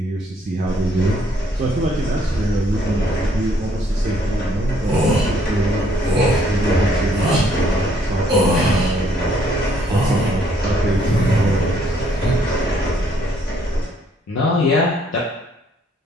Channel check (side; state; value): both; normal; correlation 0.66